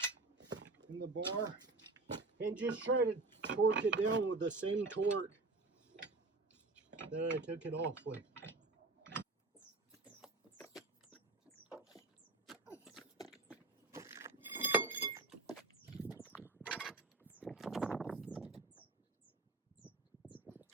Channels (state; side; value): quieter; left; 3.4 dB